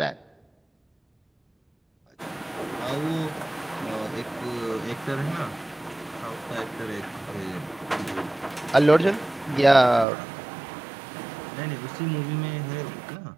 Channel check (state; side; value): drops out; left; at 10.1 s